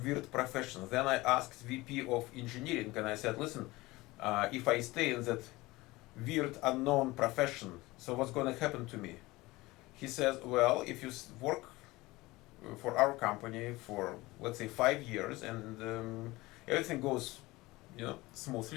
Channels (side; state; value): right; quieter; 20.5 dB